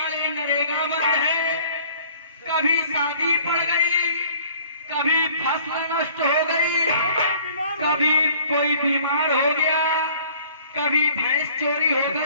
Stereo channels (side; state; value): both; inverted; correlation -0.54